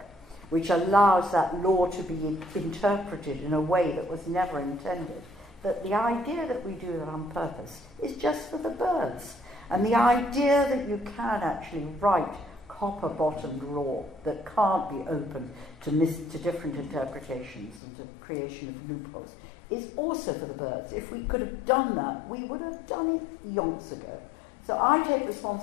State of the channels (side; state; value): right; drops out; at 17.8 s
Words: which allows that law to be interpreted in a way that was never intended, that the idea that we do that on purpose is just for the birds. And the idea that you can actually write copper-bottomed law that can't be open to different interpretations and to creation of loopholes is also for the birds. If we could have done that, we would have done it yonks ago. So I take